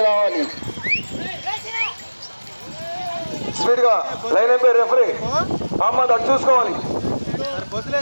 రావాలి. స్పీడ్ గా లైన్ అయిపోయి రెఫరీ మహమ్మద్ అటు చూసుకోవాలి.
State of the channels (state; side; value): inverted; both; correlation -1.00